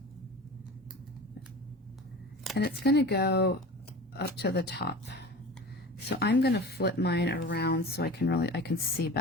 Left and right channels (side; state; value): both; normal; correlation 0.35